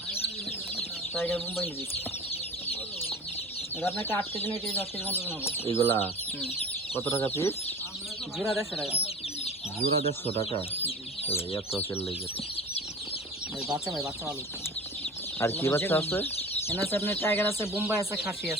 টাইগার মুম্বাই মুরগি। এটা আপনাকে 8 কেজি না কেজি 10 কেজি মতো হবে। এগুলা হুম। কত টাকা পিস? জোড়া 150 টাকা। জোড়া 150 টাকা। এত তেল লেগে। ভাই বাচ্চা ভালো। আর কি বাচ্চা আছে? এখানে আছে আপনার টাইগার আছে, বোম্বাই আছে, খাসি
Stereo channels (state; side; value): normal; both; correlation 0.38